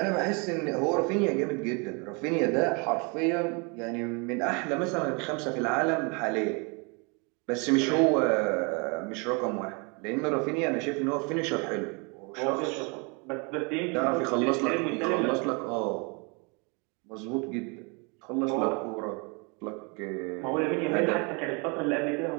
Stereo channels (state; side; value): quieter; left; 32.1 dB